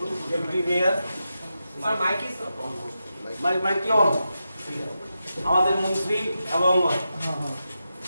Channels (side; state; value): both; inverted; correlation -0.89